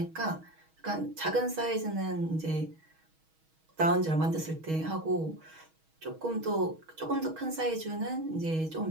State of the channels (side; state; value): left; late; 6.3 ms